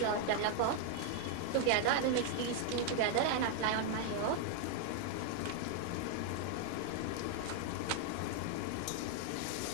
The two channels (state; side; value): different; both; correlation 0.00